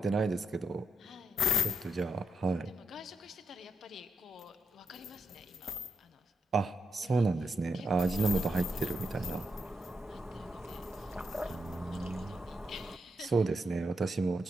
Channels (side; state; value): both; normal; correlation 0.82